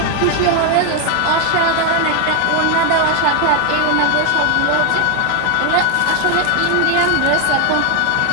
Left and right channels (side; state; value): both; different; correlation 0.01